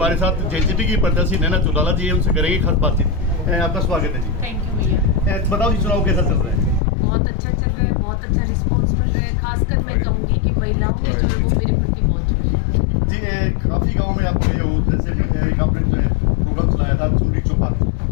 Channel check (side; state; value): right; drops out; at 6.8 s